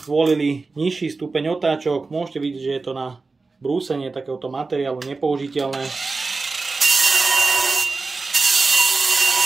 zvolili nižší stupeň otáčok, môžete vidieť, že je to na brúsenie takéhoto materiálu nepoužiteľné.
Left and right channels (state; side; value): quieter; left; 3.9 dB